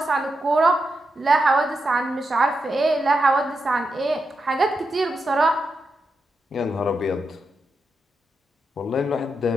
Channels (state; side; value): normal; both; correlation 0.86